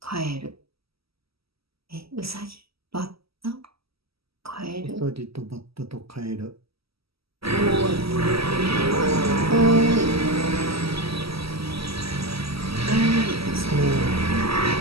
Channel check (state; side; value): late; left; 0.76 ms